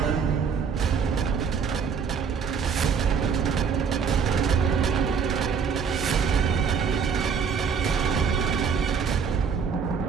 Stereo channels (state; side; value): quieter; left; 6.4 dB